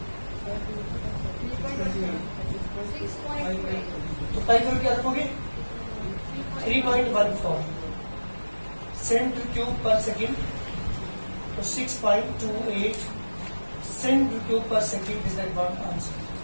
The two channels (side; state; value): both; inverted; correlation -1.00